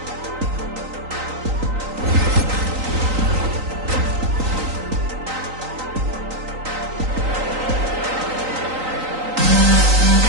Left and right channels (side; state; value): left; late; 3.9 ms